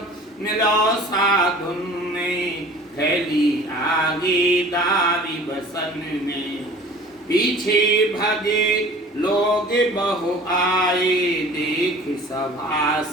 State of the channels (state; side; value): normal; both; correlation 0.45